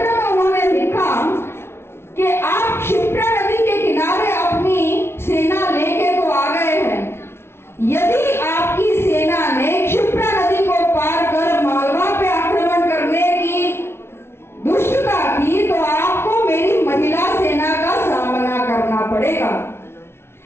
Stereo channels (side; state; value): right; late; 0.12 ms